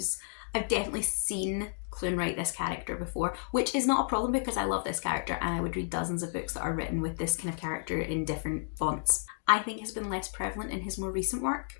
I've definitely seen Klune write this character before, which is not a problem because I love this character and I would read dozens of books that are written with this kind of character in different fonts. I think has been less prevalent in his more recent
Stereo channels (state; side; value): silent; right; digital silence